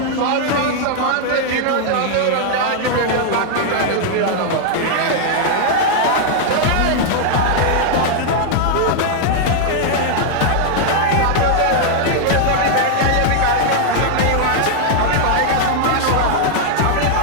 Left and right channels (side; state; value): both; different; correlation 0.00